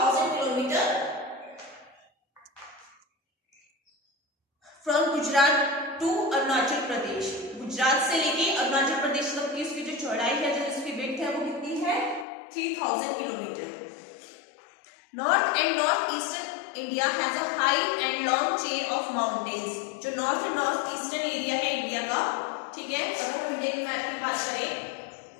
kilometre. From Gujarat to Arunachal Pradesh. Gujarat से लेके अरुणाचल प्रदेश तक की उसकी जो चौड़ाई है, जो उसकी विड्थ है वो कितनी है? 3000 kilometre. North and north eastern India has a high and long chain of mountains. जो north and north eastern area है इंडिया का, ठीक है. अगर हम इंडियन मैप की बात करें,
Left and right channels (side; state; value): right; drops out; at 12.2 s